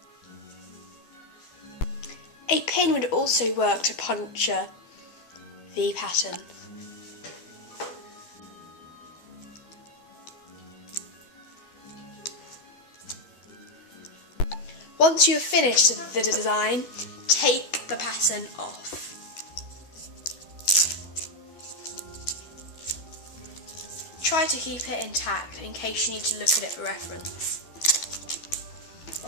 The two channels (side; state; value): right; late; 12 ms